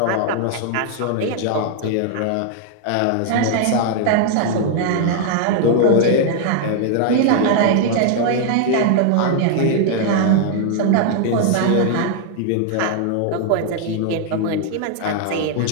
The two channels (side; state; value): both; different; correlation 0.00